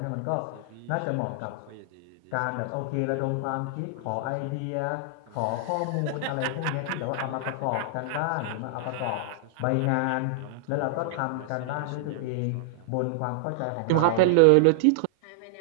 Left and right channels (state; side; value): different; both; correlation -0.01